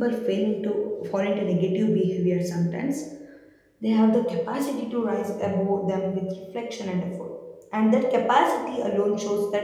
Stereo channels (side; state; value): both; identical; correlation 1.00